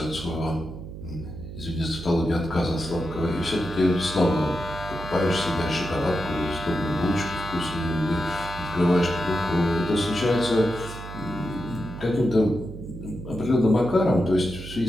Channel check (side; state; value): right; noise; hum, 11 dB below the sound